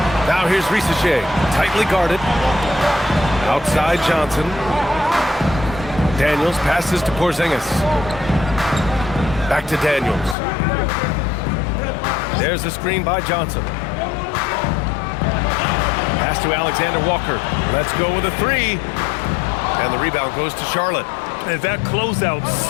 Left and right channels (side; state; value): right; drops out; at 10.4 s